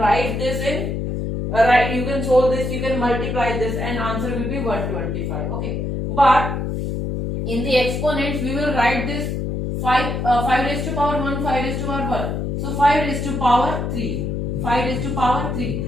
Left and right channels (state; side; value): noise; left; hum, 2 dB below the sound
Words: this in you can solve this, you can multiply this, and answer will be 125. Okay, but in the exponents we will write this 5 raised to power 1, 5 raised to power 1. So 5 raised to power 3, 5 raised to power 3